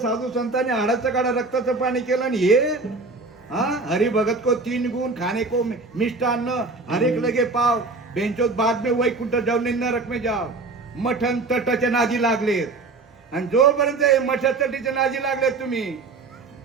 संतांनी हाडाचं काढा रक्ताचं पाणी केलं. आणि हे हरी भगत को 3 गुण, खाने को मिष्टान्न, हर एक लगे पाव, बेंचोत बाद में वैकुंठ जाऊन नरक में जाव. मठन तटाच्या नादी लागलेत. आणि जोपर्यंत मठा तटीच्या नादी लागलेत तुम्ही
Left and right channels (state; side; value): quieter; left; 3.7 dB